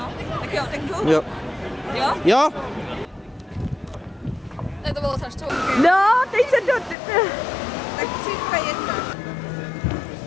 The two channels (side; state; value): right; drops out; at 7.0 s